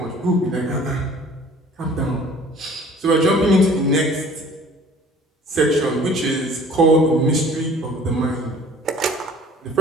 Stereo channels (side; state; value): both; normal; correlation 0.50